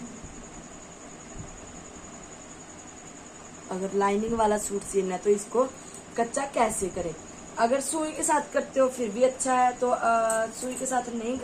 अगर लाइनिंग वाला सूट सिलना है तो इसको कच्चा कैसे करें। अगर सुई के साथ करते हो फिर भी अच्छा है, तो सुई के साथ नहीं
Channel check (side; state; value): both; identical; correlation 1.00